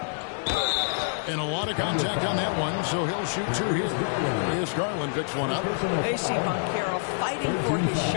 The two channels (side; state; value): right; silent; digital silence